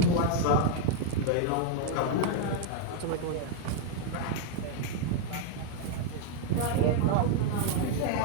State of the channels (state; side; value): different; both; correlation 0.01